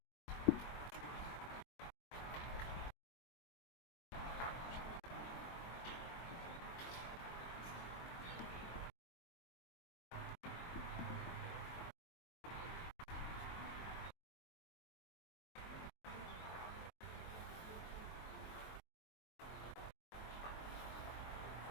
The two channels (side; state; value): right; late; 23 ms